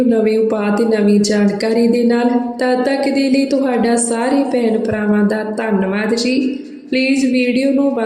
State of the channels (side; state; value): both; identical; correlation 1.00